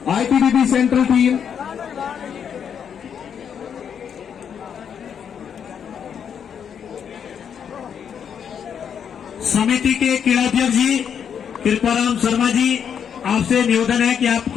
ITBP central team. समिति के क्रीड़ाध्यक्ष जी कृपाराम शर्मा जी, आपसे निवेदन है कि आप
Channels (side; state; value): right; quieter; 7.8 dB